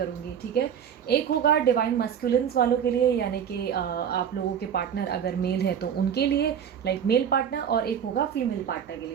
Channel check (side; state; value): left; quieter; 8.4 dB